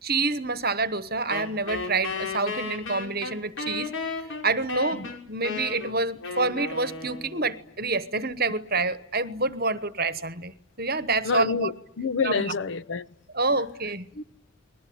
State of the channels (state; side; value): normal; both; correlation -0.20